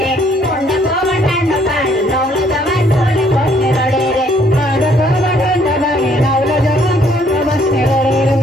रे कोंडा को ठंडा पानी नवल दवाई सोले कोने रड़े रे कोंडा को ठंडा पानी नवल दवाई सोले बसने रड़े रे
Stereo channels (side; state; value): both; normal; correlation 0.64